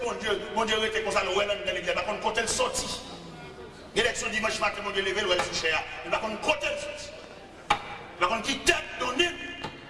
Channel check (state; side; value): identical; both; correlation 1.00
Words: bon Dieu était comme ça, le ouais dans l'église, par contre, côté le sorti. L'élection dimanche matin, mon Dieu levé, le ouais sous cher. Mais par contre, côté le sorti. Par contre, qui tête donnée,